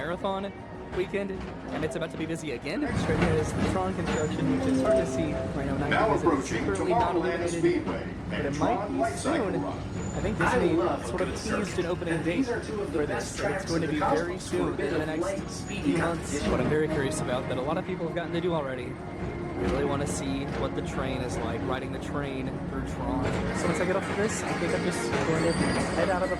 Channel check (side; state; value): both; identical; correlation 1.00